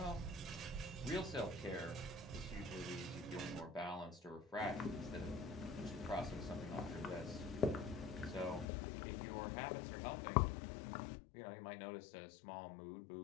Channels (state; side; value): drops out; right; at 8.7 s